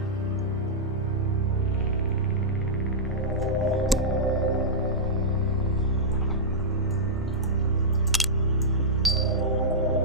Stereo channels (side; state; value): both; normal; correlation -0.09